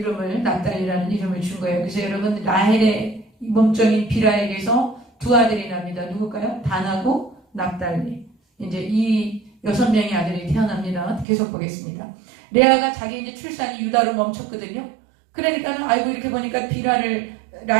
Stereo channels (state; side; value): drops out; left; at 11.2 s